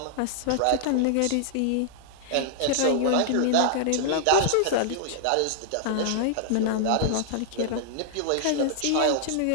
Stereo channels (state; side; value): different; both; correlation -0.01